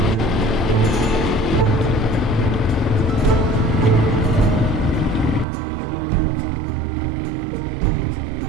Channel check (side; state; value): left; drops out; at 5.5 s